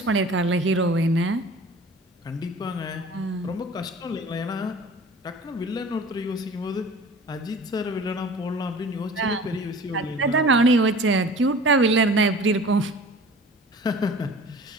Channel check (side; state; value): both; normal; correlation 0.43